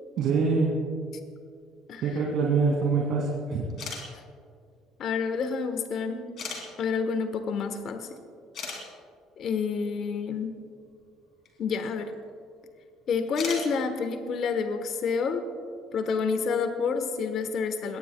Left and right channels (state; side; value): normal; both; correlation 0.59